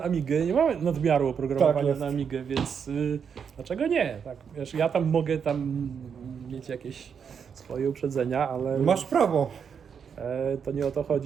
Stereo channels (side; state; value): left; quieter; 7.0 dB